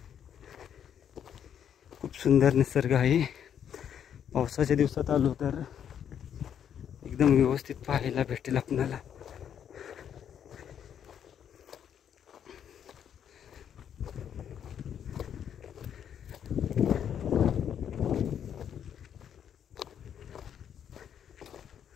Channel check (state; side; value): quieter; right; 8.9 dB